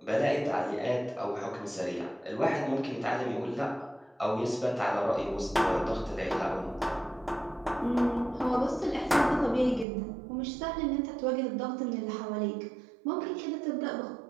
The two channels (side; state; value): left; drops out; at 9.9 s